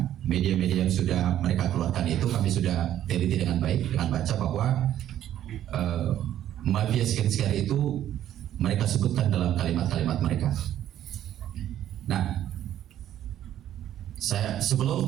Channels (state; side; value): quieter; left; 11.6 dB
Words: media-media yang sudah mereka keluarkan itu kami sudah teliti dengan baik, dengan baca bahwa mafia skincare itu mereka sebutkan dalam kalimat-kalimat mereka. Nah, saya